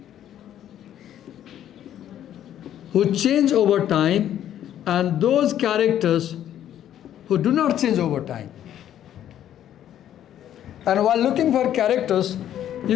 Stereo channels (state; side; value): quieter; right; 11.0 dB